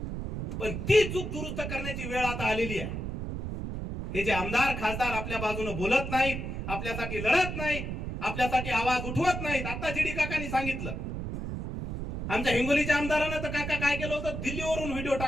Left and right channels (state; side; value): noise; right; rumble, 5 dB below the sound